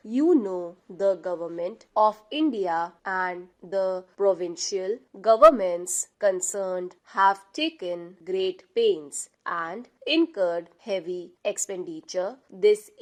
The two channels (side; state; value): both; identical; correlation 1.00